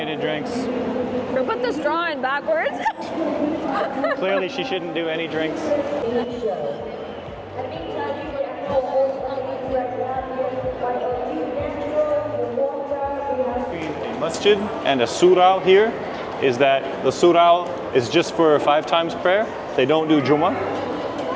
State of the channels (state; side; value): identical; both; correlation 1.00